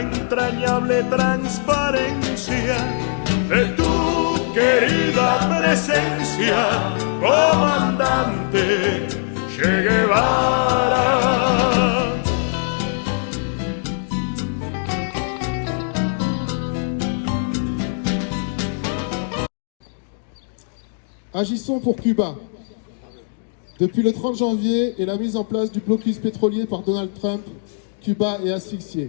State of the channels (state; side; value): silent; right; digital silence